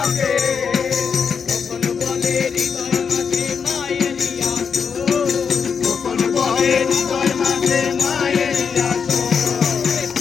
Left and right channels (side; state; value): right; quieter; 6.3 dB